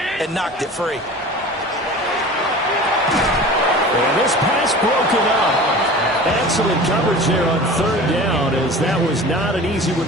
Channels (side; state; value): both; normal; correlation 0.38